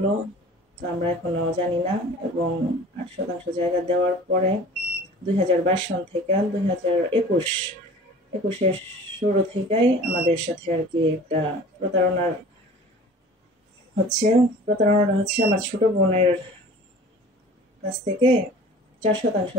তো আমরা এখনো জানি না। এবং 8% জায়গা দেওয়ার পরে 2022 সন থেকে 2021-এর শুরু থেকেই আমাদের সাথে আর কি একটা প্রতারণাটা হচ্ছে আমার ছোট বোনের কাছ থেকে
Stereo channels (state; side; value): normal; both; correlation 0.44